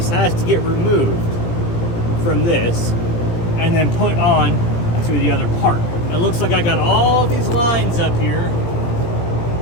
has to get removed from this and then put on to the other part. It looks like I got all these lines up here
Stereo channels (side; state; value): right; late; 17 ms